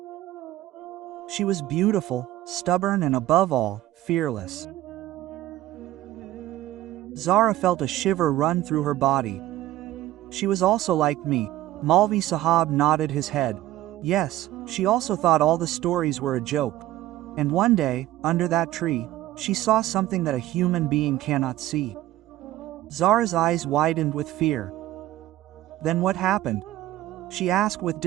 She was beautiful, stubborn and above all, fearless. Zara felt a shiver run through her body. She was also like me. Malvi Sahab nodded his head. Yes, she also thought all the stories were a joke. And one day, under that tree, she saw something that a human being cannot see. Zara's eyes widened with fear. Then what happened? She asked with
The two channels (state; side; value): quieter; left; 14.8 dB